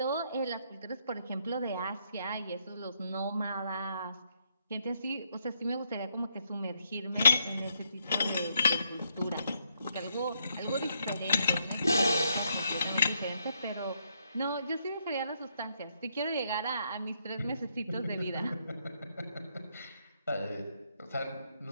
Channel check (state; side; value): inverted; both; correlation -0.76